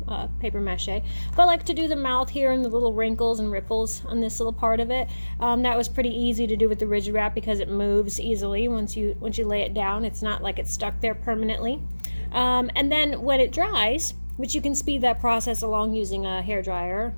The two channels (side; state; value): both; inverted; correlation -1.00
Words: paper mache. But I like to do the mouth here and the little wrinkles and ripples on this little part of it. That was pretty easy to do with the Rigid Wrap because it moves easily once you lay it down. It's not like it's stuck there permanently. And then when it dries, which you can speed that process along using a hairdryer